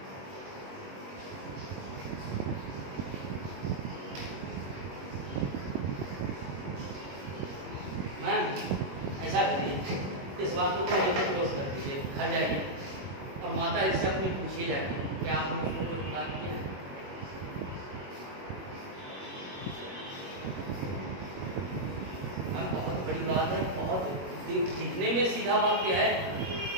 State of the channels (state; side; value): late; left; 21 ms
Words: मैम ऐसा करिए, इस बात को क्लोज कर दीजिए, घर जाइए और माता जी से अपनी पूछिए जाके क्या आपने उसको कोई बात किया है? बहुत बड़ी बात है, बहुत दिखने में सीधा वाक्य है